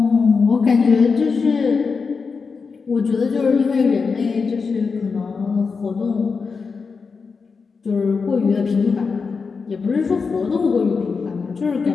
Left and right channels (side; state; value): right; quieter; 5.0 dB